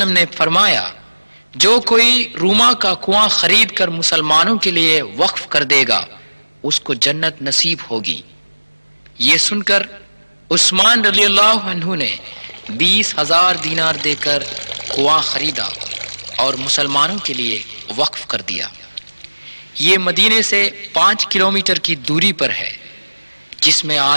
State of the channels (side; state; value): both; inverted; correlation -1.00